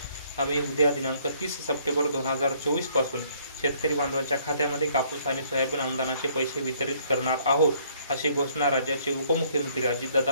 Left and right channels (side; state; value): both; inverted; correlation -0.64